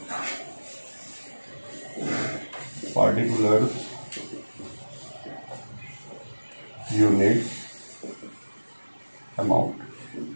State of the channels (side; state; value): both; inverted; correlation -1.00